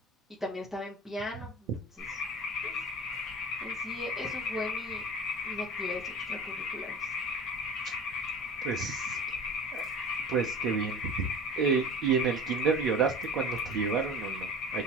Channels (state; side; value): normal; both; correlation 0.38